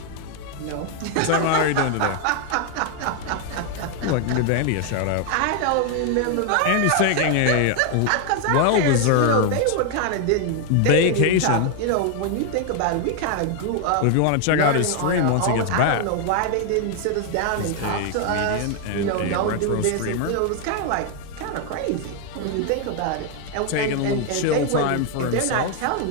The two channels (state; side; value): different; both; correlation 0.00